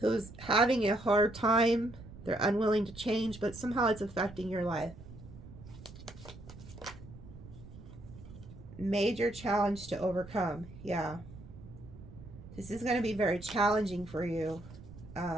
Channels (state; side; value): noise; right; rumble, 16 dB below the sound